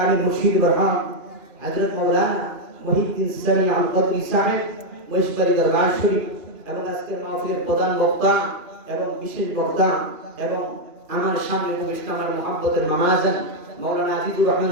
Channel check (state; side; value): late; left; 2.4 ms